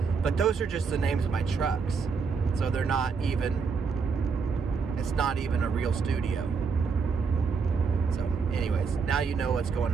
but those are just the names of my trucks. So it's not even a real studio. So anyways, now you know what's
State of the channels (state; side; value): quieter; left; 5.3 dB